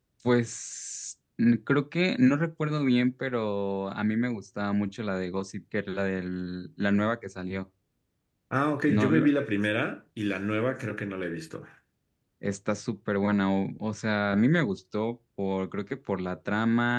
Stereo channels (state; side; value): identical; both; correlation 1.00